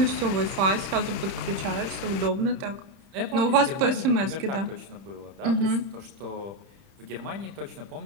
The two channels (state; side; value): late; left; 30 ms